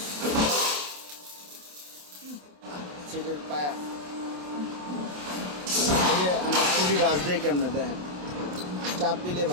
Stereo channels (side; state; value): left; late; 27 ms